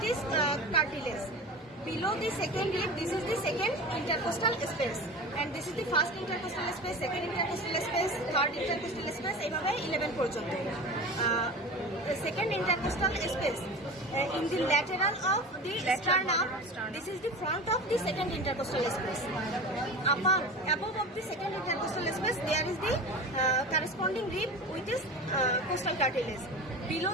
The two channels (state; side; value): normal; both; correlation 0.33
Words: is cartilage. Below the second rib, this is the second intercostal space, and this is the first intercostal space, second intercostal space, third intercostal space. এইভাবে 11 পর্যন্ত. The second intercostal space in the lateral of the sternum. This is the front of the second intercostal space. Above of the second intercostal space, there is the corresponding rib with this costal cartilage. Below